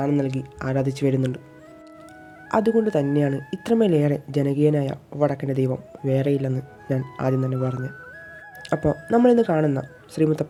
നൽകി ആരാധിച്ചു വരുന്നുണ്ട്. അതുകൊണ്ട് തന്നെയാണ് ഇത്രമേലേറെ ജനകീയനായ വടക്കൻ്റെ ദൈവം വേറെയില്ലെന്ന് ഞാൻ ആദ്യം തന്നെ പറഞ്ഞു. അപ്പോൾ നമ്മളിന്ന് കാണുന്ന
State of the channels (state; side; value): identical; both; correlation 1.00